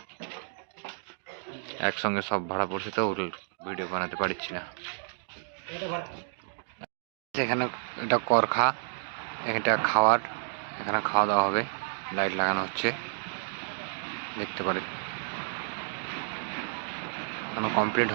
একসঙ্গে সব ভাড়া পড়ছে তো ভিডিও বানাতে পারছি না। এখানে এটা করখা, এটা খাওয়ার, এখানে খাওয়া দাওয়া হবে। লাইট লাগানো হচ্ছে, দেখতে পারেন। এখনো কমপ্লিট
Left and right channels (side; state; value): left; silent; digital silence